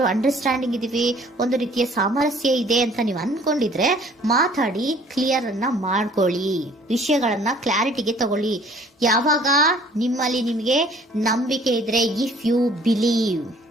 ಅಂಡರ್ಸ್ಟ್ಯಾಂಡಿಂಗ್ ಇದೀವಿ, ಒಂದು ರೀತಿಯ ಸಾಮರಸ್ಯ ಇದೆ ಅಂತ ನೀವು ಅನ್ಕೊಂಡಿದ್ರೆ ಮಾತಾಡಿ ಕ್ಲಿಯರ್ ಅನ್ನ ಮಾಡ್ಕೊಳ್ಳಿ, ವಿಷಯಗಳನ್ನ ಕ್ಲಾರಿಟಿಗೆ ತಗೊಳ್ಳಿ. ಯಾವಾಗ ನಿಮ್ಮಲ್ಲಿ ನಿಮಗೆ ನಂಬಿಕೆ ಇದ್ರೆ, ಇಫ್ ಯು ಬಿಲೀವ್,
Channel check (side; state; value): both; normal; correlation 0.55